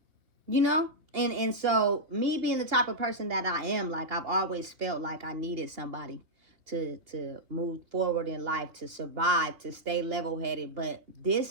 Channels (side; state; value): left; late; 2.8 ms